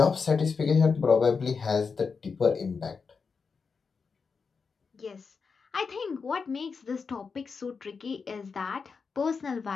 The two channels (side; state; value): right; quieter; 5.2 dB